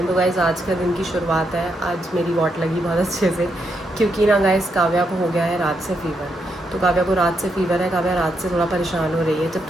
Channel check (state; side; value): normal; both; correlation 0.80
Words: तो गाइज़ आज का दिन की शुरुआत है, आज मेरी वॉट लगी बहुत अच्छे से, क्योंकि ना गाइज़ काव्या को हो गया है रात से फीवर। तो काव्या को रात से फीवर है, काव्या रात से थोड़ा परेशान हो रही है। जब